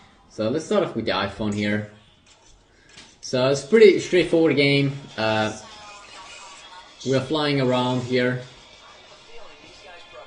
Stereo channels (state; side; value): identical; both; correlation 1.00